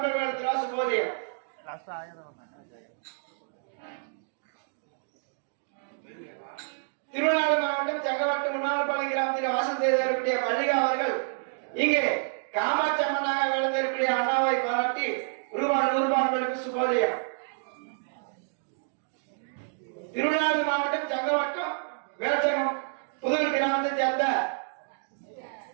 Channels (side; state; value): left; silent; digital silence